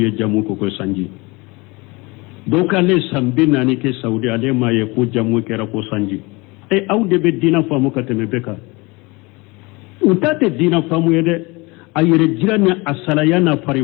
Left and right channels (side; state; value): right; quieter; 25.2 dB